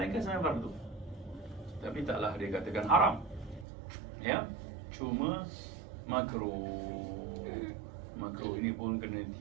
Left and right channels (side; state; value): left; drops out; at 3.7 s